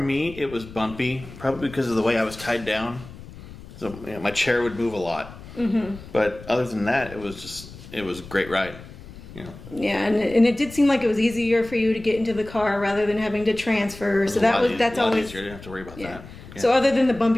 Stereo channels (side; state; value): left; noise; rumble, 16 dB below the sound